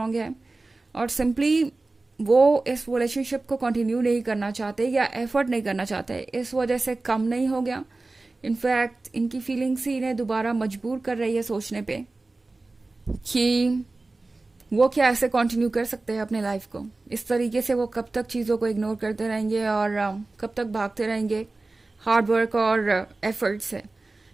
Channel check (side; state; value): left; quieter; 3.3 dB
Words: है, और सिंपली वो इस रिलेशनशिप को कंटिन्यू नहीं करना चाहते या एफर्ट नहीं करना चाहते, इस वजह से कम नहीं हो गया। इनफैक्ट इनकी फीलिंग्स ही इन्हें दोबारा मजबूर कर रही है सोचने पे कि वो क्या ऐसे कंटिन्यू कर सकते हैं अपने लाइफ को। इस तरीके से वो कब तक चीज़ों को इग्नोर करते रहेंगे और कब तक भागते रहेंगे हार्ड वर्क और एफर्ट से